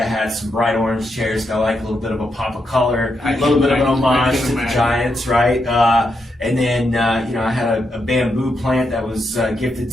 had some bright orange chairs. Got like a little bit of a pop of color, a little bit of an homage to the Giants, right? And then, you know, I had a bamboo plant that was gifted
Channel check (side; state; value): both; normal; correlation 0.82